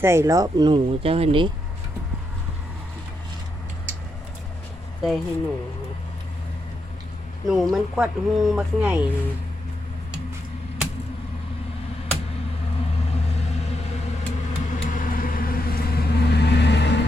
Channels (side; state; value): both; normal; correlation 0.82